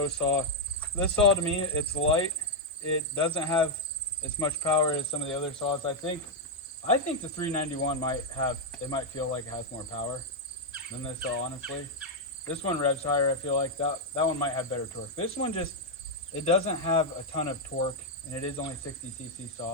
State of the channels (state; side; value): normal; both; correlation -0.01